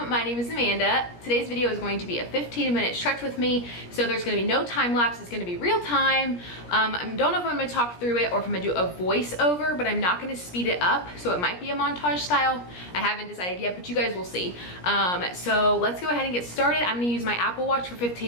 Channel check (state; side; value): late; right; 17 ms